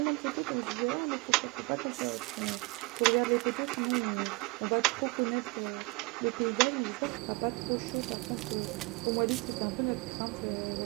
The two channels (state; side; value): quieter; left; 27.0 dB